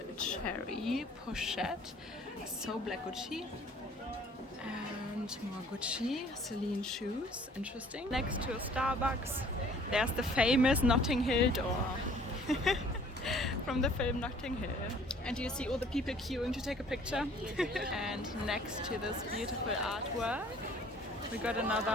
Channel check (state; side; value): normal; both; correlation 0.54